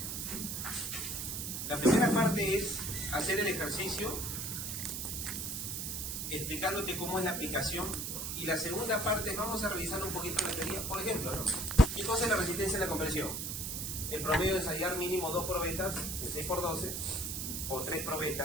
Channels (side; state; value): right; noise; hiss, 4 dB below the sound